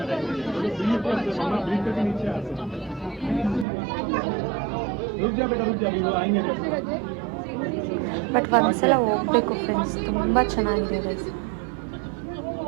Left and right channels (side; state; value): left; drops out; at 3.7 s